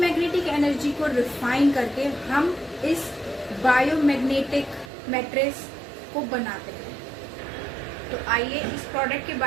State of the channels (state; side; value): drops out; left; at 4.9 s